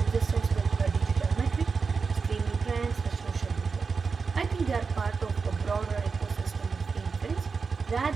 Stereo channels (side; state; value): left; quieter; 5.0 dB